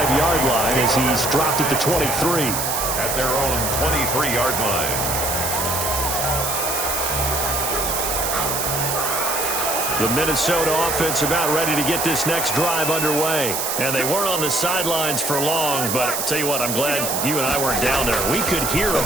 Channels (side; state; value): right; noise; hiss, 1 dB below the sound